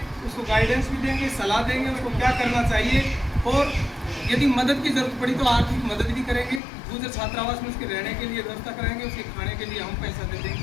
उसको गाइडेंस भी देंगे, सलाह देंगे उसको क्या करना चाहिए, और यदि मदद की जरूरत पड़ी तो आर्थिक मदद भी करेंगे। दूसरे छात्रावास में उसके रहने के लिए व्यवस्था कराएंगे, उसके खाने के लिए हम पैसा दे देंगे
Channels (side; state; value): right; drops out; at 6.6 s